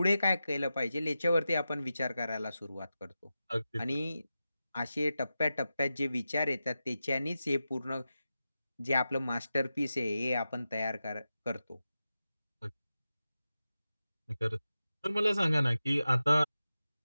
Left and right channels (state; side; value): inverted; both; correlation -0.92